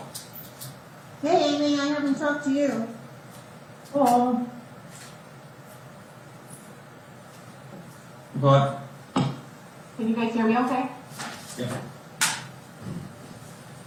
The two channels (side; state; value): both; identical; correlation 1.00